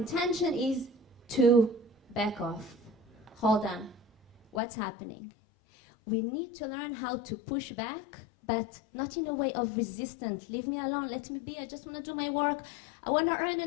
is to back off. Hold on. What's happening? We need to learn how to push back, but not in a way of resistance. Leave me alone, let me be, I just want to do my work. I want to earn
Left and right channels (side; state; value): right; drops out; at 4.6 s